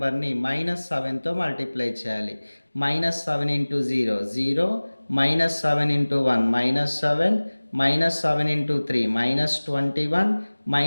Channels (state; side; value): inverted; both; correlation -1.00